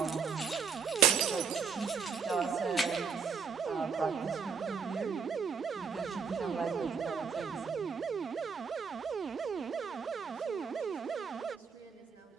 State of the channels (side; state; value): left; quieter; 6.1 dB